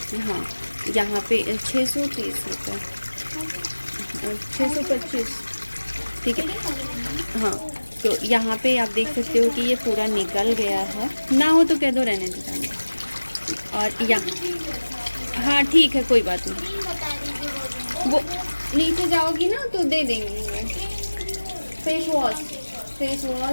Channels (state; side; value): inverted; both; correlation -1.00